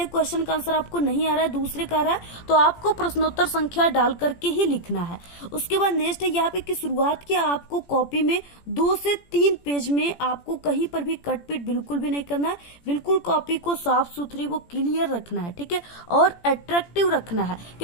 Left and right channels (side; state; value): right; late; 17 ms